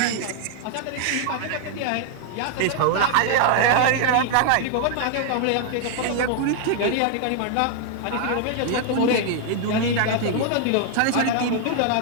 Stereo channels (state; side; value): different; both; correlation 0.00